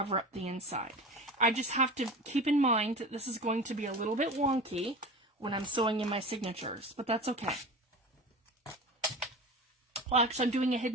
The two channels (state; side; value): normal; both; correlation 0.32